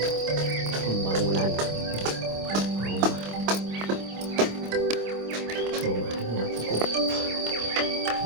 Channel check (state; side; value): late; left; 26 ms